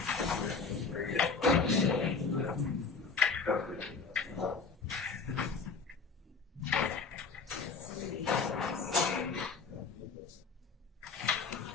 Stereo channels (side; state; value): right; quieter; 4.9 dB